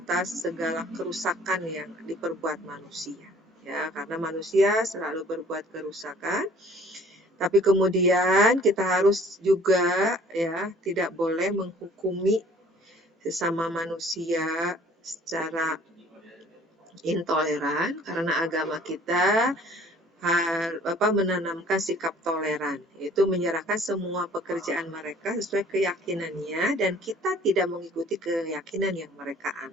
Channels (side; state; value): both; normal; correlation 0.54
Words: segala kerusakan yang diperbuat manusia, ya, karena manusia selalu berbuat kerusakan. Tapi kemudian kita harus juga, ya, tidak boleh menghukumi sesama manusia secara intoleran, karena agama kita menanamkan sikap toleran, yaitu menyerahkan semua pekerjaan mereka sesuai keyakinannya dan kita tidak mengikuti keyakinan yang mereka